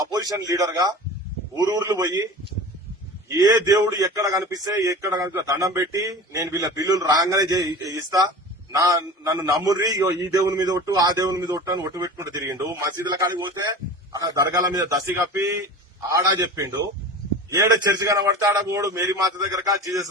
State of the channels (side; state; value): both; normal; correlation 0.35